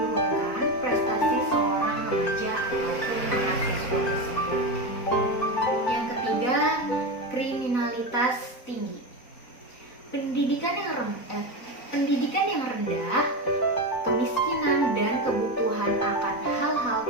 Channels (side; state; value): right; late; 4.0 ms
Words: prestasi seorang remaja ataupun mahasiswa. pendidikan yang rendah, kemiskinan, dan kebutuhan akan hal-hal